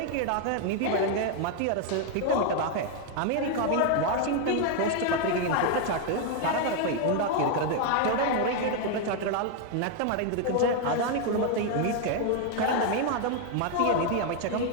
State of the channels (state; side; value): different; both; correlation 0.01